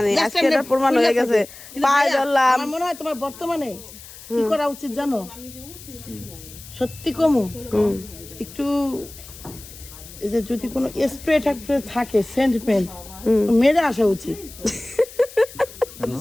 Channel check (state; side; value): noise; left; hiss, 17 dB below the sound